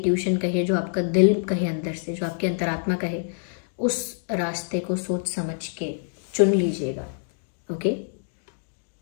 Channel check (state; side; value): silent; right; digital silence